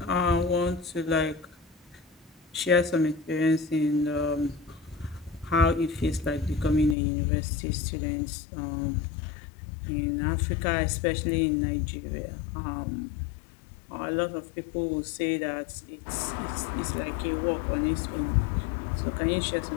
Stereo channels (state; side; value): drops out; right; at 7.0 s